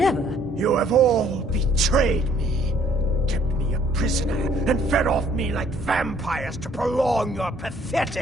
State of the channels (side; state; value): both; normal; correlation 0.62